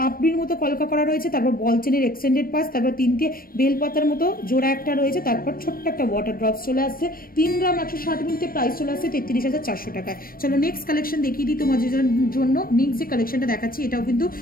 মতো কলকা করা রয়েছে, তারপর বল চেনের এক্সটেন্ডেড পাস, তারপর 3টে বেলপাতার মতো জোড়া একটা রয়েছে, তারপর ছোট্ট একটা ওয়াটার ড্রপস চলে আসছে। 3 গ্রাম 160 মিলিতে প্রাইস চলে আসছে 33,400 টাকায়। চলো নেক্সট কালেকশন দেখিয়ে দিই তোমাদের জন্য। নেক্সট যে কালেকশনটা দেখাচ্ছি এটাও কিন্তু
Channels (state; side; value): late; right; 0.42 ms